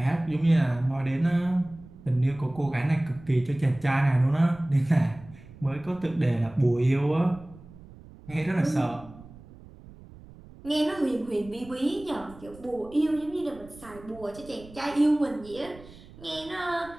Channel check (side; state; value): right; noise; rumble, 20 dB below the sound